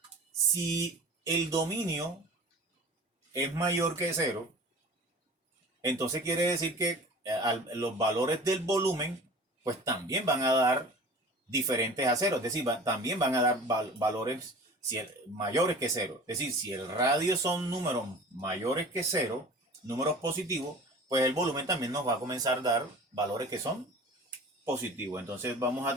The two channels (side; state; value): both; normal; correlation 0.41